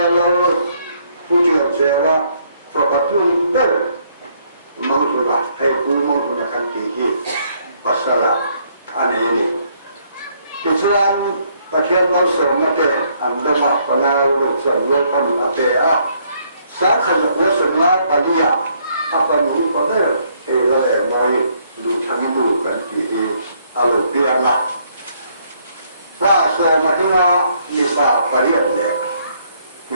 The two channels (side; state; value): both; inverted; correlation -0.69